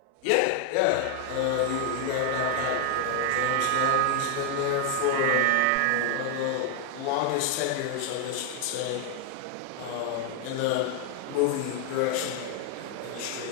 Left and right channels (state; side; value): different; both; correlation 0.00